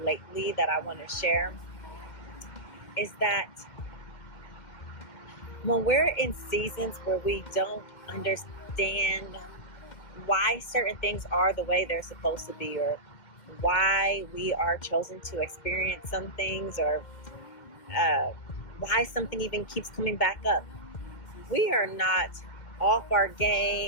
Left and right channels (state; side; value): late; right; 2.1 ms